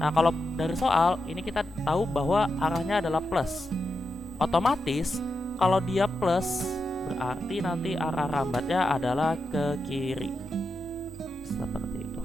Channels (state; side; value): normal; both; correlation 0.87